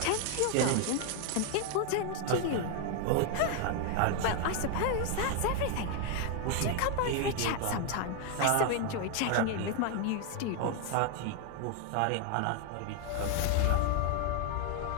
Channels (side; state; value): both; different; correlation 0.01